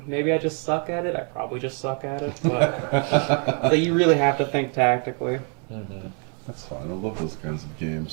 Maybe I just suck at it. I probably just suck at it. But so you really have to think tactically. Mm-hmm. That's fine. I love those kinds of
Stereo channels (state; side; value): quieter; left; 39.5 dB